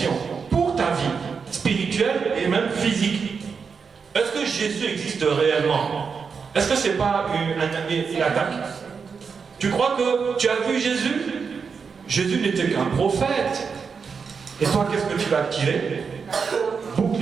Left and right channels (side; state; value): left; quieter; 5.7 dB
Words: pour ta vie spirituelle et même physique. Est-ce que Jésus existe réellement? Est-ce que c'est pas une attaque? Tu crois que tu as vu Jésus? Jésus n'était qu'un prophète. Et toi, qu'est-ce que tu vas tirer?